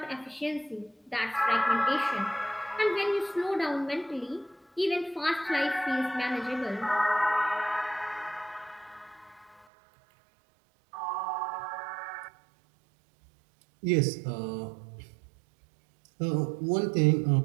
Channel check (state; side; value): drops out; left; at 9.7 s